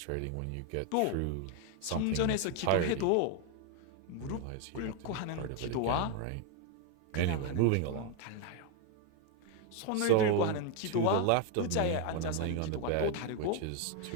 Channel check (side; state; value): both; different; correlation 0.01